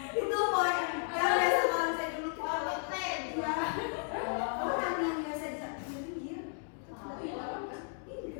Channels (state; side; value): silent; right; 55 dB below the other